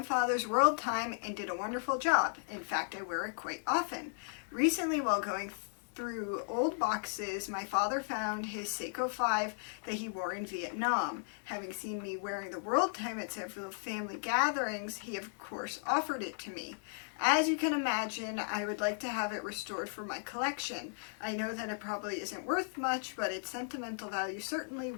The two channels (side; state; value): right; silent; 54 dB below the other